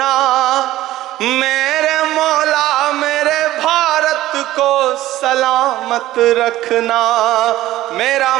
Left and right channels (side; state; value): left; quieter; 15.3 dB